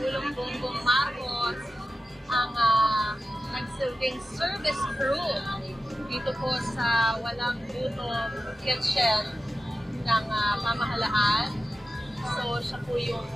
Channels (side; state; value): both; normal; correlation 0.93